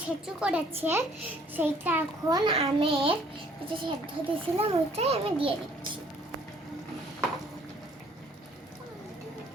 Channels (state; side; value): normal; both; correlation 0.59